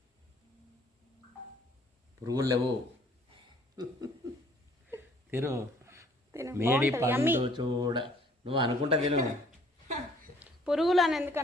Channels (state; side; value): normal; both; correlation 0.59